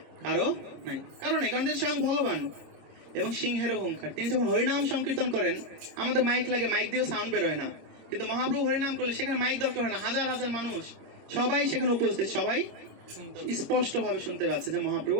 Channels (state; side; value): late; left; 26 ms